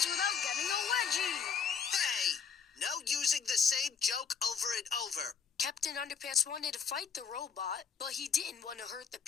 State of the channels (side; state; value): right; quieter; 6.5 dB